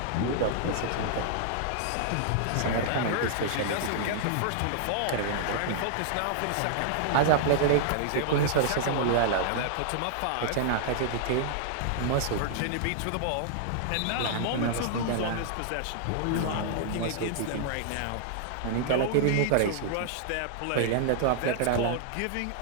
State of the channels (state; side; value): different; both; correlation -0.01